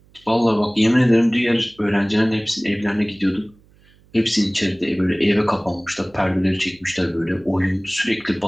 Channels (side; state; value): right; noise; hum, 30 dB below the sound